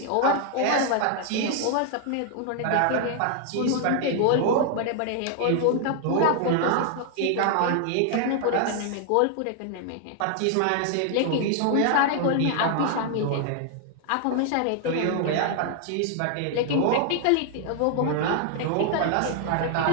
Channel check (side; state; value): both; different; correlation 0.00